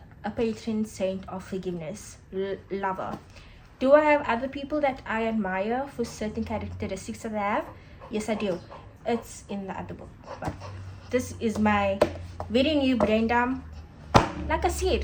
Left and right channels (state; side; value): identical; both; correlation 1.00